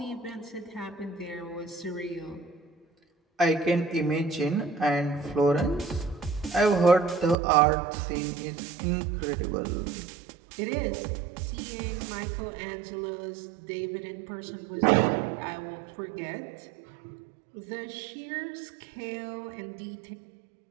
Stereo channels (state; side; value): drops out; left; at 7.4 s